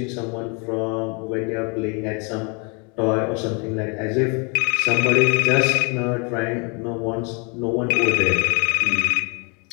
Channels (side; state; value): right; quieter; 32.9 dB